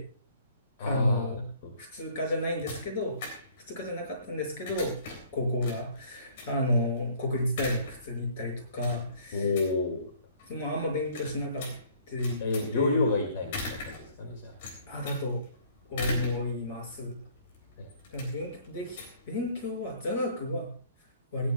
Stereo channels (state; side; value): inverted; both; correlation -0.58